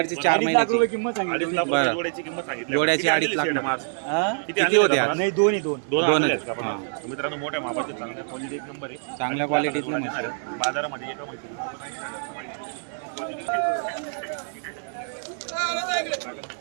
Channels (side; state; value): left; silent; digital silence